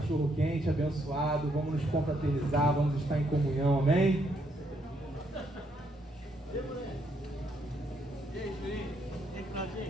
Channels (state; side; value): normal; both; correlation 0.74